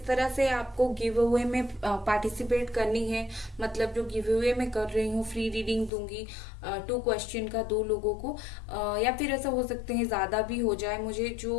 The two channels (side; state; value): right; drops out; at 5.9 s